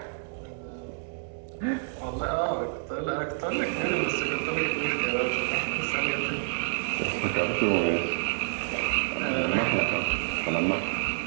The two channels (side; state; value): left; silent; 59 dB below the other